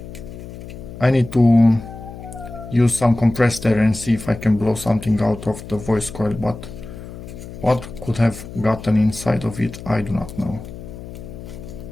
I need to use some compressed air and see if I can blow something out of the voice coil, but what could have gotten inside of it, I do not know.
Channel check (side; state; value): left; noise; hum, 13 dB below the sound